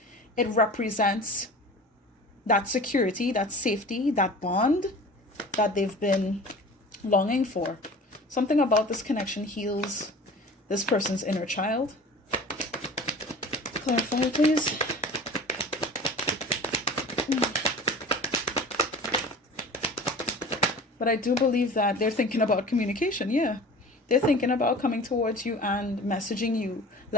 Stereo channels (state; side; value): normal; both; correlation 0.40